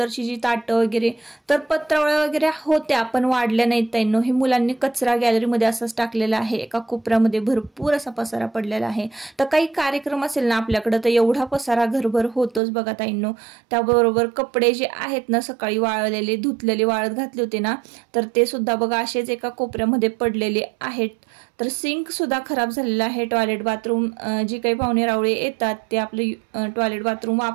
जी ताटं वगैरे, तर पत्रावळ्या वगैरे होत्या पण वाढल्या नाहीत ताईंनो। हे मुलांनी कचरा गॅलरीमध्ये असाच टाकलेला आहे। एका कोपऱ्यामध्ये भरपूर असा पसारा पडलेला आहे। तर काही कार्यक्रम असेल ना आपल्याकडे तर एवढा पसारा घरभर होतोच बघा ताईंनो। त्याबरोबर कपडे जे आहेत ना, सकाळी वाळलेले धुतलेले वाळत घातले होते ना, तर ते सुद्धा बघा असेच एका कोपऱ्यामध्ये पडलेले आहेत। तर सिंक सुद्धा खराब झालेला आहे। टॉयलेट बाथरूम जी काही पाहुणे रावळे येतात ते आपले टॉयलेट बाथरूम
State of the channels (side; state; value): left; drops out; at 12.6 s